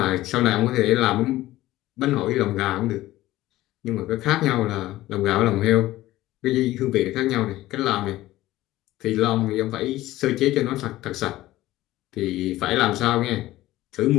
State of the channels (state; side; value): quieter; right; 16.2 dB